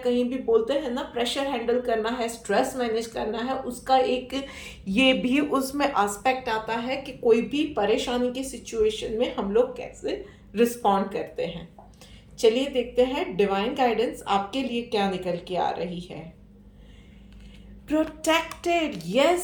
भी बोलते हैं ना, प्रेशर हैंडल करना है, स्ट्रेस मैनेज करना है, उसका एक ये भी उसमें एस्पेक्ट आता है कि कोई भी परेशानी की सिचुएशन में हम लोग कैसे रिस्पॉन्ड करते हैं। चलिए देखते हैं डिवाइन गाइडेंस आपके लिए क्या निकल के आ रही है। Protected,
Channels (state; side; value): identical; both; correlation 1.00